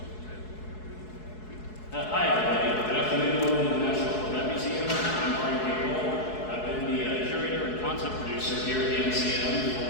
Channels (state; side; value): late; right; 4.7 ms